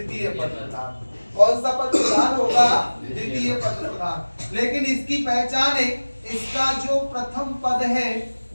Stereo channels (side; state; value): both; inverted; correlation -1.00